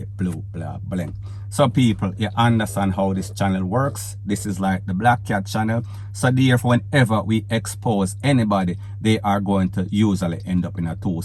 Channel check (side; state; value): both; identical; correlation 1.00